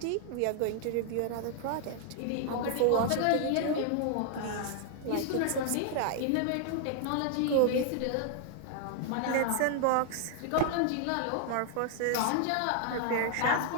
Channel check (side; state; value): both; different; correlation 0.00